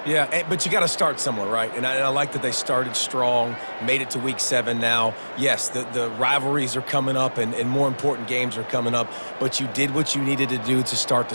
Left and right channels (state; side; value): inverted; both; correlation -1.00